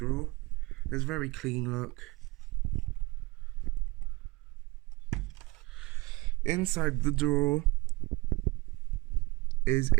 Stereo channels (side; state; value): left; quieter; 22.7 dB